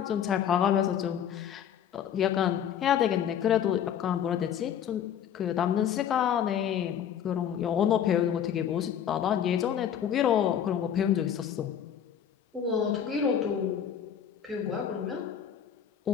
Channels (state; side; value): quieter; right; 9.1 dB